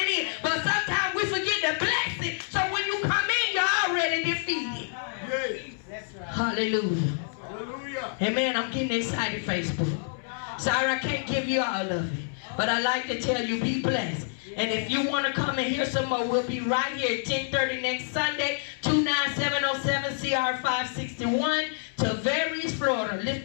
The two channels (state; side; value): silent; right; 60 dB below the other